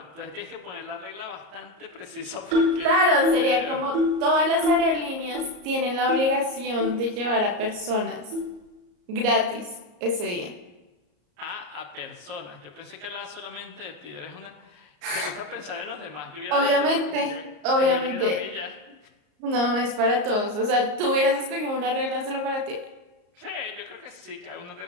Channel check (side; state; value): left; late; 34 ms